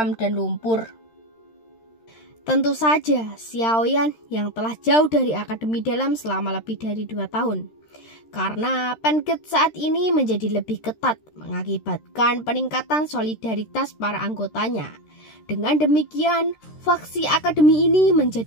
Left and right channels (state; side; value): late; right; 13 ms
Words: dan lumpur. Tentu saja, Xiaoyan yang telah jauh dari akademi dalam selama lebih dari 2 tahun. Karena Pancake saat ini menjadi lebih ketat, mengakibatkan peningkatan solidaritas para anggotanya. Dengan demikian, faksi akademi ini